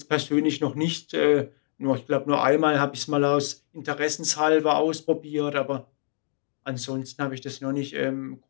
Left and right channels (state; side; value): silent; right; digital silence